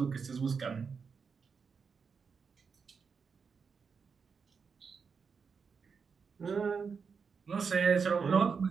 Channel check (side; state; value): left; quieter; 5.6 dB